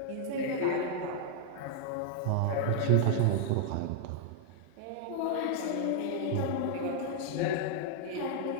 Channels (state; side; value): different; both; correlation -0.01